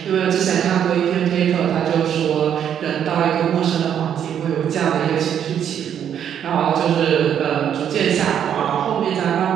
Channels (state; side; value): quieter; left; 9.1 dB